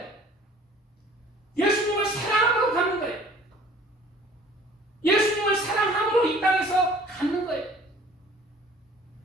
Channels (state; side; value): normal; both; correlation 0.51